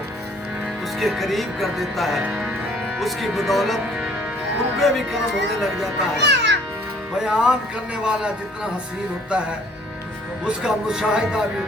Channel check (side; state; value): both; normal; correlation 0.58